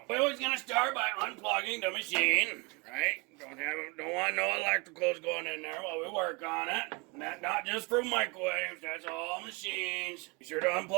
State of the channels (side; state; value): left; quieter; 28.9 dB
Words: we're always gonna start by unplugging the machine, right? Don't want no electricals going in there while we work on it. Not just for microwaves, that's all machines. Be sure to